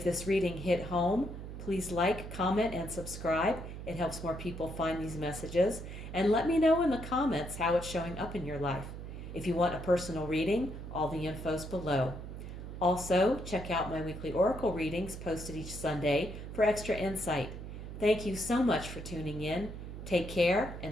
this reading hit home, please like, comment, and subscribe. It helps more people find these messages. And let me know in the comments how it's showing up in your life. If you want a personal reading, all the info's below. Also, check out my weekly oracle readings posted each Sunday for extra insight. Thank you so much for tuning in. Take care,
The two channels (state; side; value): noise; right; hum, 9 dB below the sound